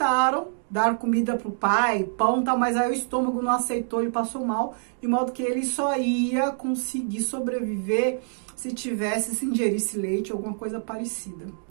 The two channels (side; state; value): left; silent; digital silence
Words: dar comida pro pai, pão e tal, mas aí o estômago não aceitou, ele passou mal, de modo que ele só ia conseguir sobreviver se se ingerisse leite ou alguma coisa parecida.